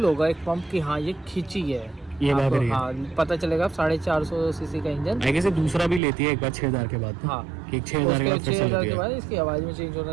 होगा एक पंप की, हाँ ये खींची है, ये भाग आपको, रही है। हाँ पता चलेगा। 450 सीसी का इंजन। आई गेस दूसरा भी लेती है एक बार 6000 के बाद। हाँ, कि 6000 के बाद फिर से 6000 लेती के है, बाद इसकी आवाज़ में चेंज होना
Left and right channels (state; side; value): drops out; left; at 6.0 s